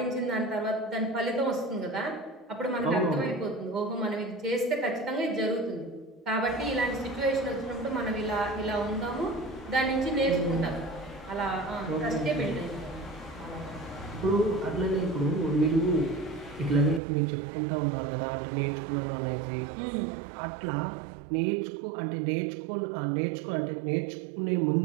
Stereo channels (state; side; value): drops out; left; at 17.0 s